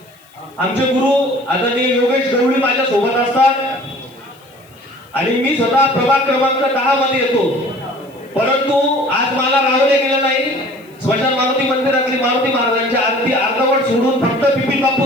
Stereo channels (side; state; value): left; noise; hiss, 30 dB below the sound